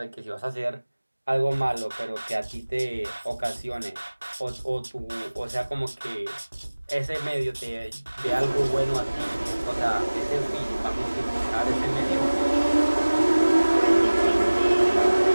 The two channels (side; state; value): both; inverted; correlation -1.00